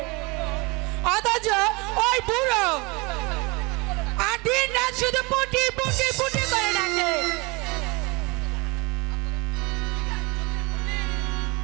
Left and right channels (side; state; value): left; quieter; 26.6 dB